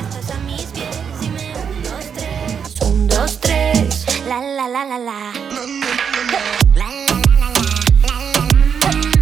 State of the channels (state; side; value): quieter; left; 7.1 dB